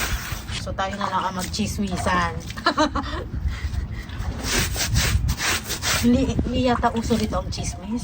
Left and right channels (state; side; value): identical; both; correlation 1.00